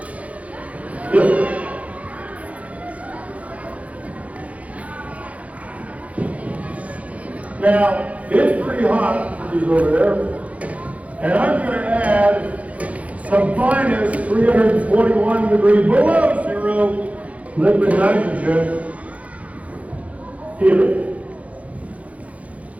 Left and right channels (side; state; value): left; late; 0.067 ms